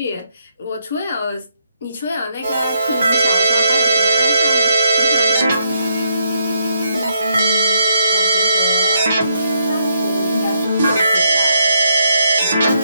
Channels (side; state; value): both; inverted; correlation -0.76